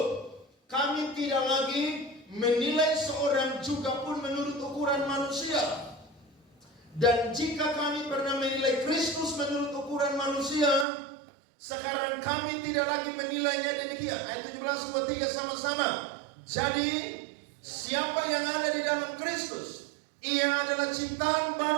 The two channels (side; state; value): left; drops out; at 10.9 s